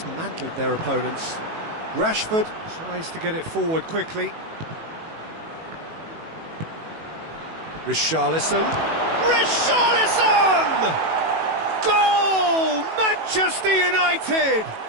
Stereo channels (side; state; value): left; late; 18 ms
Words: their opponents. Rashford tries to get it forward quickly. Richarlison. Richarlison! Goal! Manchester United!